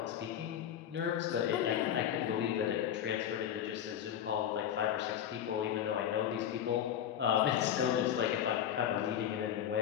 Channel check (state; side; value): quieter; right; 9.9 dB